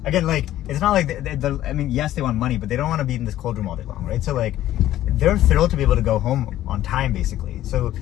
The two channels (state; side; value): quieter; right; 13.4 dB